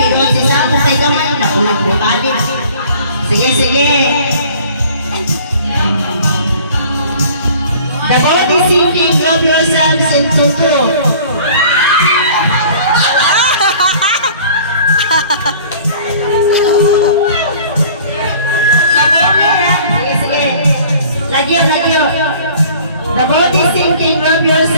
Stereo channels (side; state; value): both; inverted; correlation -0.49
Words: si Sapo kay Gaman, nakulang-bumalik. Sige. The body sinking, grab yourselves into 2. Sige. Lagyo. The body sinking, grab